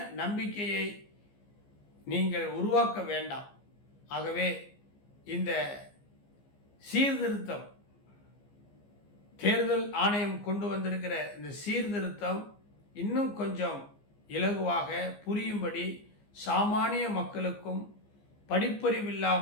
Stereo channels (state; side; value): late; right; 15 ms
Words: நம்பிக்கையை நீங்கள் உருவாக்க வேண்டாம். ஆகவே இந்த சீர்திருத்தம், தேர்தல் ஆணையம் கொண்டு வந்திருக்கிற இந்த சீர்திருத்தம் இன்னும் கொஞ்சம் இலகுவாக புரியும்படி சாமானிய மக்களுக்கும்